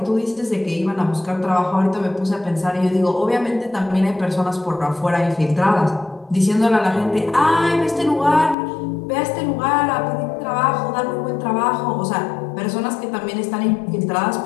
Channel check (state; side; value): drops out; right; at 8.6 s